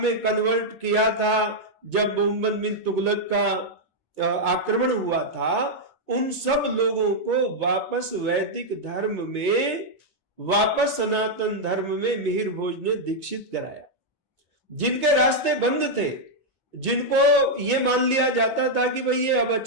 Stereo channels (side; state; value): both; normal; correlation -0.03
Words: कन्वर्ट किया था जब मोहम्मद बिन तुगलक का आक्रमण हुआ था, उन सब लोगों को वापस वैदिक धर्म में, वापस सनातन धर्म में मिहिर भोज ने दीक्षित कराया। जिनके रास्ते बंद थे, जिनको ये मान लिया जाता था कि भाई ये अब